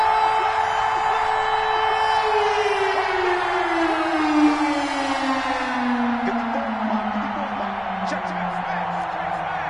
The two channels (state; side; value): identical; both; correlation 1.00